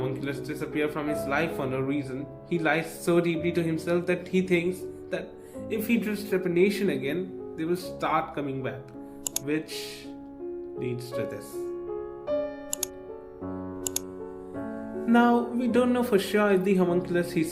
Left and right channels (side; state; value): both; identical; correlation 1.00